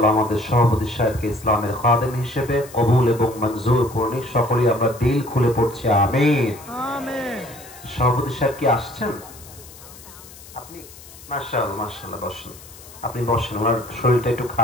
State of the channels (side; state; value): left; noise; hiss, 19 dB below the sound